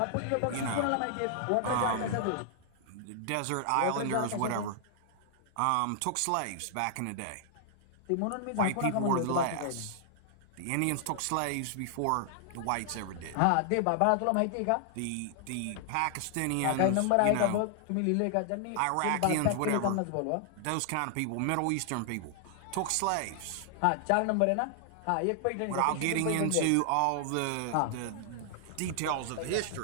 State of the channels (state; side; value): different; both; correlation -0.01